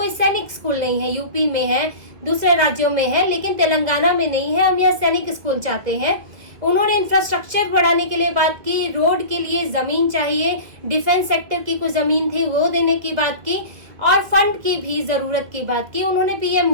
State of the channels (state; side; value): late; left; 2.1 ms